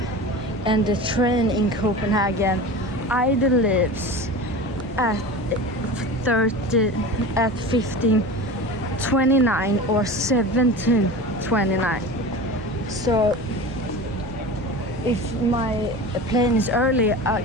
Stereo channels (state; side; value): normal; both; correlation 0.32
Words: and the train in Copenhagen either leaves at 15:29 or 17:29. So if my plane is early, I